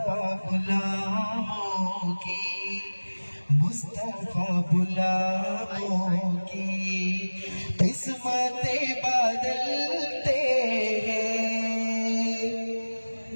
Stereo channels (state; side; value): inverted; both; correlation -1.00